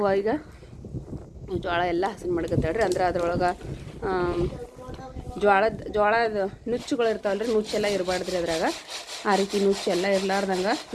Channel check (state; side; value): identical; both; correlation 1.00